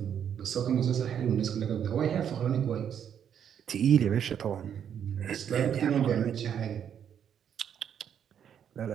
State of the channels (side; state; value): left; quieter; 8.7 dB